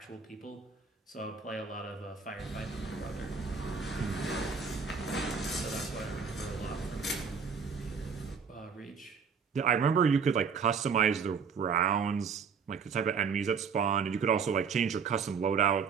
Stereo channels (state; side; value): quieter; left; 6.0 dB